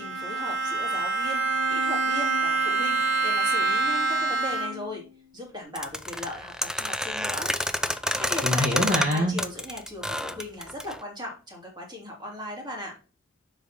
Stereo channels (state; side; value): normal; both; correlation 0.54